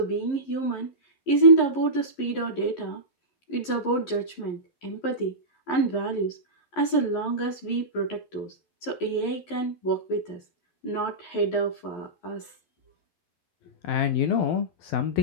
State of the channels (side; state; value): right; late; 11 ms